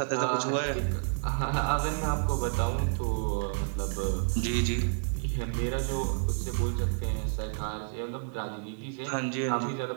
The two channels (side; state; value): left; silent; digital silence